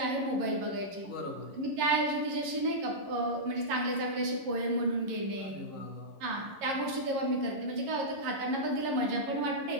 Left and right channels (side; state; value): left; late; 11 ms